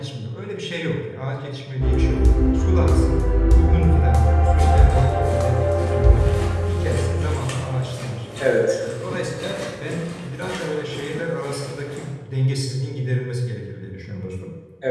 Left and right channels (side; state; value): both; identical; correlation 1.00